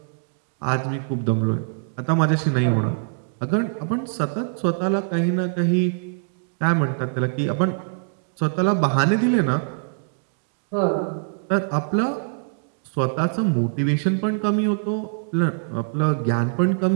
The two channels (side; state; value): left; silent; digital silence